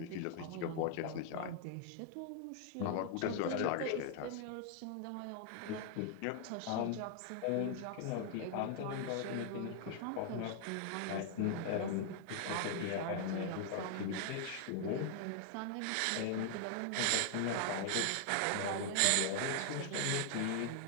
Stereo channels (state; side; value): different; both; correlation 0.00